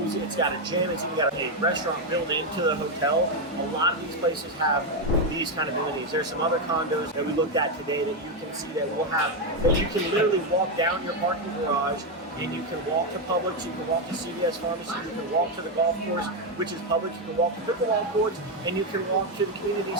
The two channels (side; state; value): both; normal; correlation 0.05